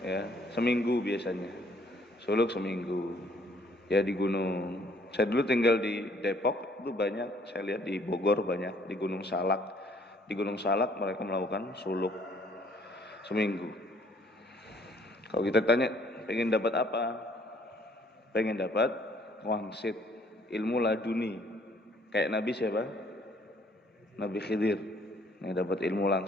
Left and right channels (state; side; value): normal; both; correlation 0.62